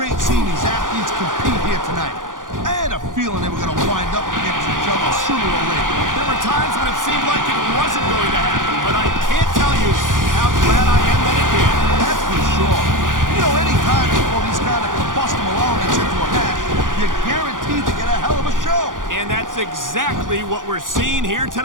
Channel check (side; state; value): left; late; 0.89 ms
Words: seeing these athletes compete here tonight. I had a feeling they were going to wind up against each other sooner or later. There were times when it seemed like it wasn't going to happen, but I can't tell you how glad I am that it did. That's for sure. You know, any time you throw these kind of combustible elements into a match, you're guaranteed to get a hell of a show. And that's exactly what we're seeing here